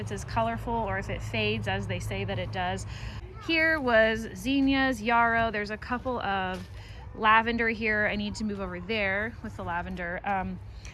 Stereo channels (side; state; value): both; identical; correlation 1.00